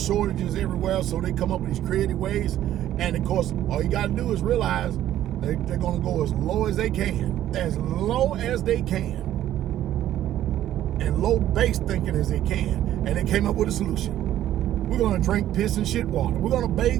everywhere, so they come up with these creative ways. And of course, all you got to do is realize they're going to go as low as they can, and low base thinking as they can. And they came up with a solution. We're going to drink piss and shit water. We're going to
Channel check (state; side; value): quieter; left; 12.4 dB